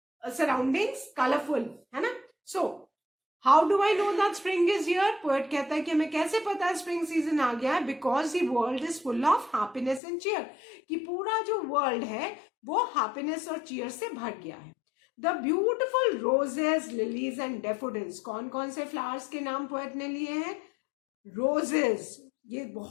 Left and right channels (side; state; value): right; drops out; at 10.0 s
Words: सराउंडिंग्स कलरफुल है ना. So how do I know that spring is here? Poet कहता है कि हमें कैसे पता है स्प्रिंग सीजन आ गया है? Because the world is full of happiness and cheer. कि पूरा जो वर्ल्ड है वो हैप्पीनेस और चीयर से भर गया है. The beautiful roses, lilies and daffodils. कौन कौन से फ्लावर्स के नाम पोएट ने लिए हैं? रोजेस, ये